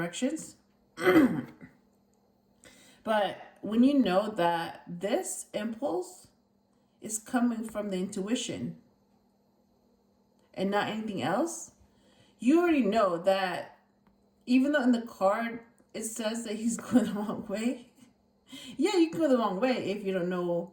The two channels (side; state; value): both; identical; correlation 1.00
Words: but when you know that this impulse is coming from the intuition and not anything else, you already know that even though in the card it says that he's going the wrong way, yeah, you can go the wrong way if you don't